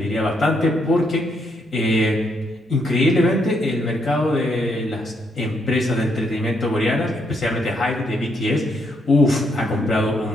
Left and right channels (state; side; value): normal; both; correlation 0.75